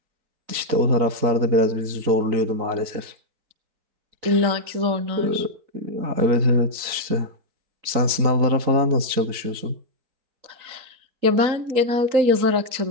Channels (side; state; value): left; late; 4.0 ms